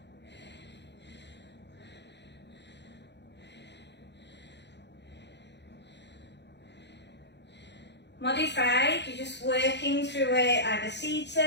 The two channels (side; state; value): right; late; 0.50 ms